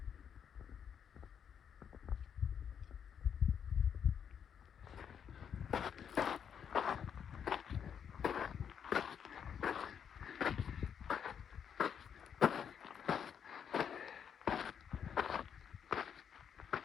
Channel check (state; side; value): quieter; right; 7.8 dB